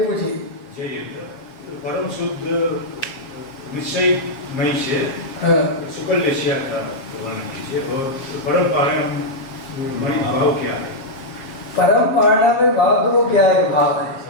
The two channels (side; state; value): right; late; 7.4 ms